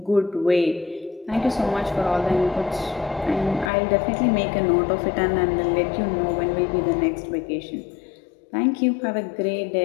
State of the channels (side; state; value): right; drops out; at 3.7 s